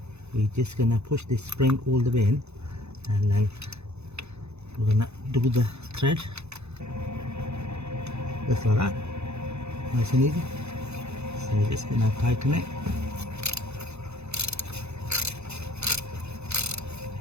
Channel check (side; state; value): left; late; 0.81 ms